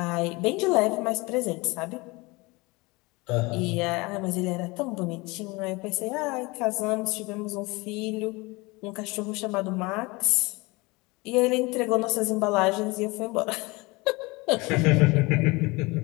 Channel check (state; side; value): quieter; right; 24.4 dB